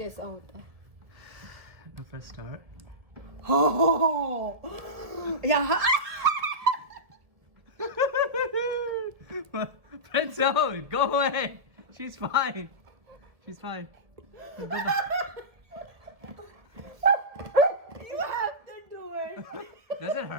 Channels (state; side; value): late; left; 1.5 ms